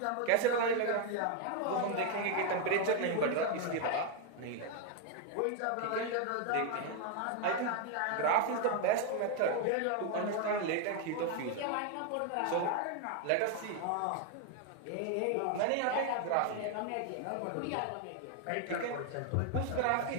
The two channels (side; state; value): both; different; correlation 0.01